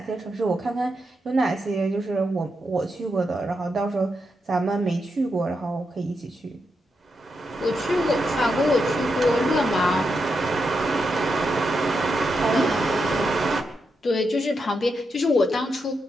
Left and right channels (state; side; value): normal; both; correlation 0.84